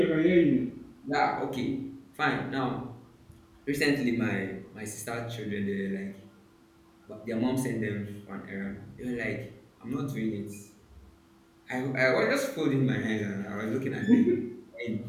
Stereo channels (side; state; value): both; identical; correlation 1.00